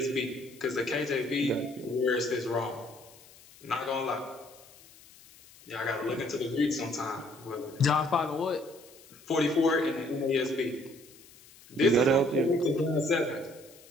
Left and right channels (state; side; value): noise; left; hiss, 23 dB below the sound